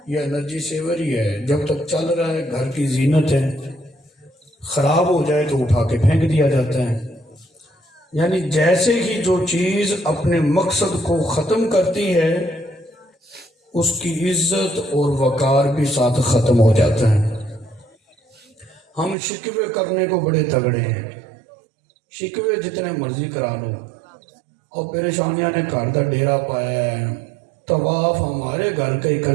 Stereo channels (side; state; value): left; drops out; at 19.2 s